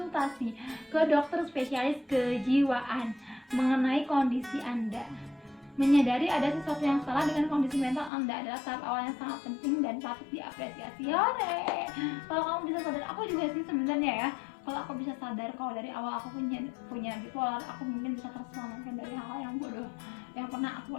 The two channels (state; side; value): drops out; right; at 8.1 s